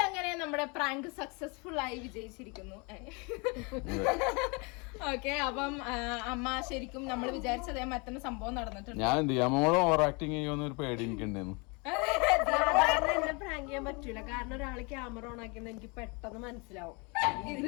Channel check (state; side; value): quieter; right; 30.5 dB